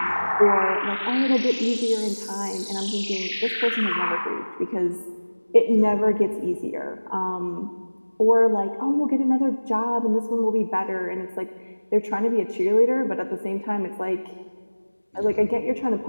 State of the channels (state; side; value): inverted; both; correlation -1.00